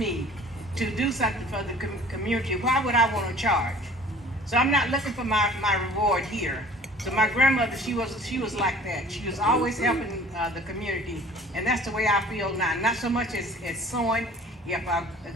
to do something for the community, why would I want to charge? So I'm not looking for my reward here. So my grandmother, she was like that. She was always helping the community, and that's the way I feel now. Not so much as sewing.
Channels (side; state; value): both; normal; correlation 0.48